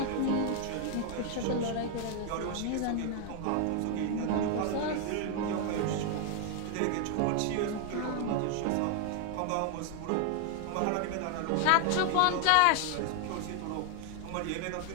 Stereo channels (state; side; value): different; both; correlation 0.00